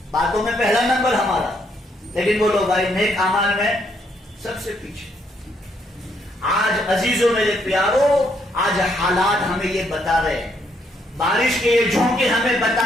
باتوں میں پہلا نمبر ہمارا, لیکن بولو بھائی نیک اعمال میں سب سے پیچھے. آج عزیزوں میرے پیارو, آج حالات ہمیں یہ بتا رہے ہیں, بارش کے یہ جھونکے ہمیں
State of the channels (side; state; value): both; normal; correlation 0.72